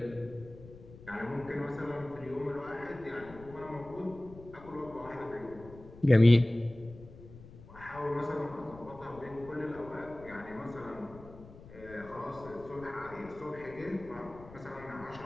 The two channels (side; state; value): left; noise; rumble, 18 dB below the sound